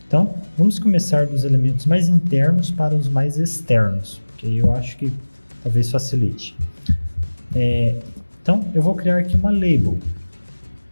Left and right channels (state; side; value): inverted; both; correlation -1.00